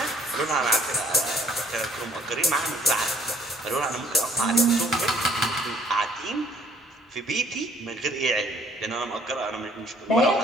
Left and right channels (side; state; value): both; normal; correlation 0.61